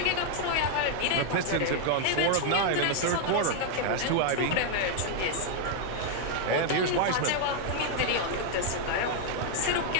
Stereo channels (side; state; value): both; different; correlation 0.00